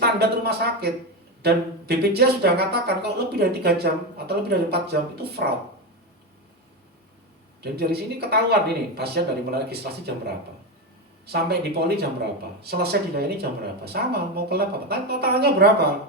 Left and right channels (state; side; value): normal; both; correlation 0.15